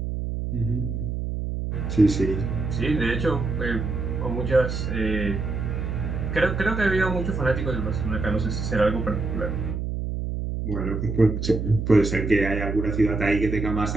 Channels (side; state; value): right; noise; hum, 3 dB below the sound